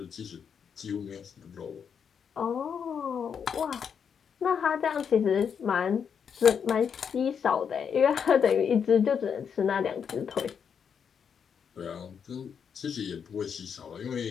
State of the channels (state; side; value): quieter; right; 7.1 dB